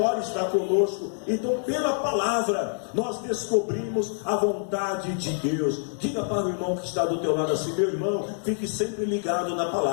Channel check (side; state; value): right; silent; digital silence